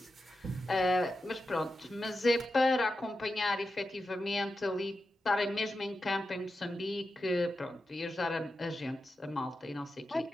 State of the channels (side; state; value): both; normal; correlation 0.90